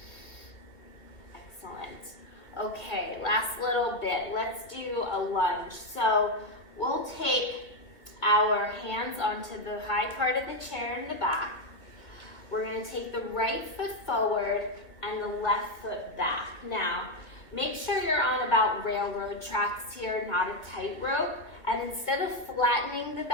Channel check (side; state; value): right; late; 1.7 ms